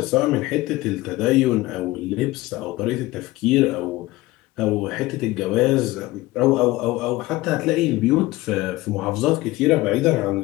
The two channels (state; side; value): quieter; right; 18.9 dB